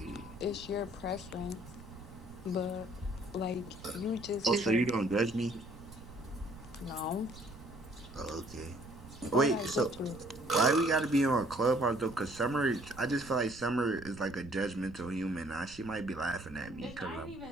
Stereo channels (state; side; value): noise; right; rumble, 17 dB below the sound